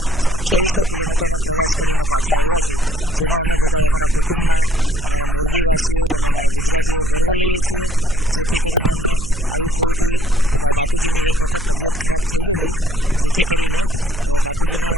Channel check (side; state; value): right; noise; hum, 10 dB below the sound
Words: 2800 કિલોમીટરનો પ્રવાસ કરીને પાછા આવ્યા છીએ, જેનો અમે બધા અમારા કુટુંબના, અમારા મોરબીવાસીઓ અને અમારા ગુજરાતીઓ ગર્વ લઈએ છીએ. જેથી કરીને અમને આવી પ્રવૃત્તિ, બાપુજીની એક વખત તબિયત ખરાબ થઈ ગયેલી, જેથી કરીને બાપુજીને